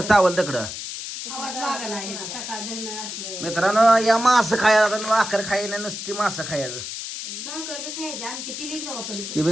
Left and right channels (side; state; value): left; noise; hiss, 7 dB below the sound